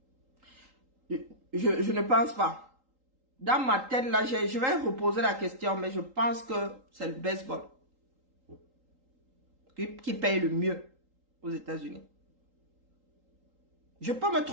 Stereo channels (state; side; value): late; left; 3.8 ms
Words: Je ne pense pas. Dans ma tête là, je vais reposer la question, mais je pense que c'est le baseball qui paye le mieux aux États-Unis. Je peux me